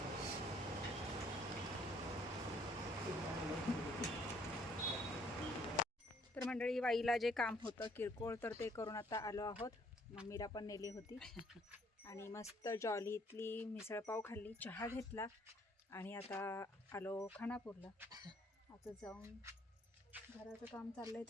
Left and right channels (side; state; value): both; normal; correlation 0.63